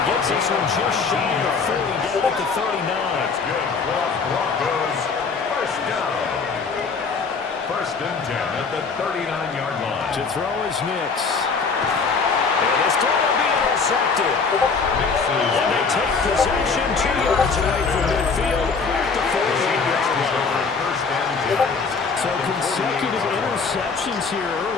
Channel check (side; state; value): right; quieter; 5.0 dB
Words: gets this one just shy of 30, down at the 39. That's good. Broncos. First down. 1st and 10 at the 39-yard line. To throw is Nix. And this time will be intercepted. And they take possession 2 yards away from midfield at the 48-yard line. So consecutive interceptions here